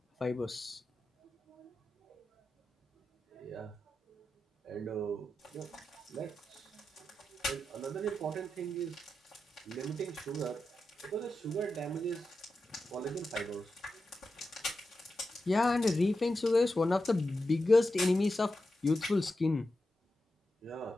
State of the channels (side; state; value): both; normal; correlation 0.90